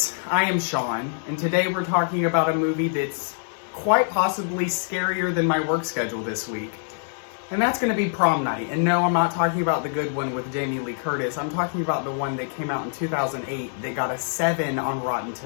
I am Sean, and today we're talking about a movie that's quite possibly scarier than my work schedule this week. And that's going to be Prom Night. And no, I'm not talking about the good one with Jamie Lee Curtis. I'm talking about the one that came out in 2008 that got a 7 on Rotten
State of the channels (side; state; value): right; silent; digital silence